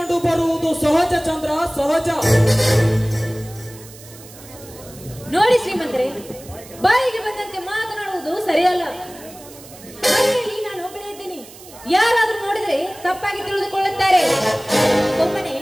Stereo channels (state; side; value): noise; right; hiss, 19 dB below the sound